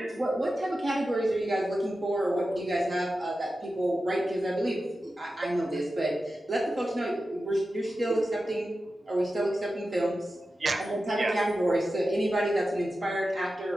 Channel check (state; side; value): normal; both; correlation 0.92